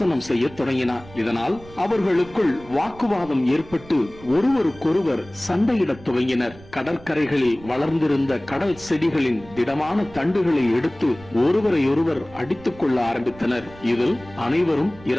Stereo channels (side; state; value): right; noise; rumble, 20 dB below the sound